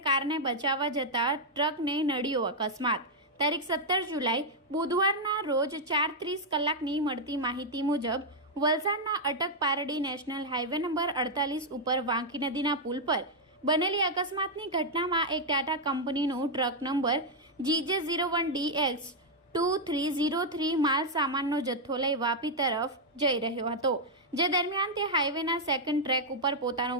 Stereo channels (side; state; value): both; normal; correlation -0.02